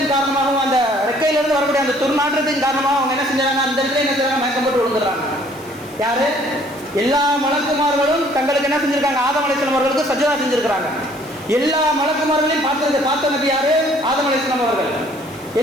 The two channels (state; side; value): noise; left; hiss, 23 dB below the sound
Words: காரணமாகவும் அந்த ரெக்கையிலிருந்து வரக்கூடிய அந்த துர்நாற்றத்தின் காரணமாக அவங்க என்ன செஞ்சாங்க, அந்த இடத்துல என்ன செய்யறாங்க, மயக்கம் போட்டு விழுந்துடுறாங்க. யாரு, எல்லா மலக்குமார்களும் தங்களுக்கு என்ன செஞ்சிருக்காங்க, ஆதம் அலைஹிஸ்ஸலாம் அவர்களுக்கு சஜ்ஜதா செஞ்சிருக்கிறாங்க. எல்லா மலக்குமார்களையும் பார்த்த நபி யாரு, ஆதம் அலைஹிஸ்ஸலாம் அவர்கள்.